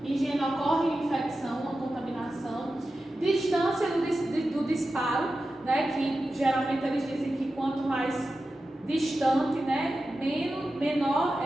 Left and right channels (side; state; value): both; normal; correlation 0.92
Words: higiene ocorre infecção, uma contaminação, distância do disparo, né? Que geralmente eles dizem que quanto mais distante, né, menor